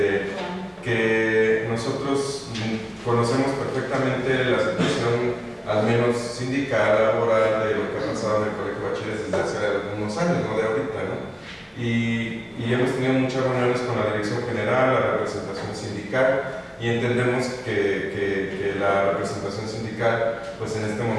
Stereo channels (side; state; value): both; identical; correlation 1.00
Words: que nosotros conocemos perfectamente la situación, al menos sindical, laboral, de lo que ha pasado en el Colegio de Bachilleres desde hace algunos años, no de ahorita, ¿no? Y hemos tenido muchas reuniones con la dirección general, la representación sindical, y entendemos que la representación sindical, pues en este